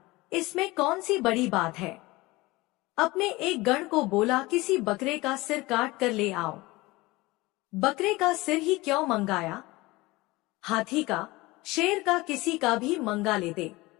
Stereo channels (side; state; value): right; quieter; 21.2 dB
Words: इसमें कौन सी बड़ी बात है। अपने एक गण को बोला, किसी बकरे का सिर काट कर ले आओ। बकरे का सिर ही क्यों मंगाया, हाथी का, शेर का, किसी का भी मंगा लेते।